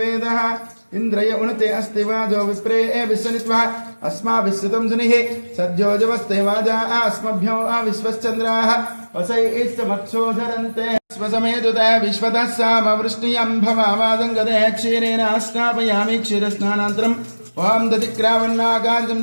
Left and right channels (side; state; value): both; inverted; correlation -1.00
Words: इंद्रय उनते अस्ति वाजो विप्रे विश्वनित्वा अस्माभिस्सुतं सुनिः सद्योजवस्ते वाजा अस्मभ्यो विश्वश्चन्द्राः वसैस्तमक्षोधरन्ते स्वसमेतुते विश्वतः सामवृष्टियं भवावादङ्गते क्षीरेण स्नापयामि क्षीरस्नानान्तरम् ओम दधिक्रावन्नागार्जं